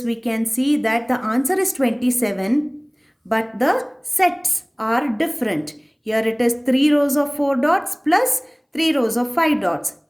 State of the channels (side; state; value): both; identical; correlation 1.00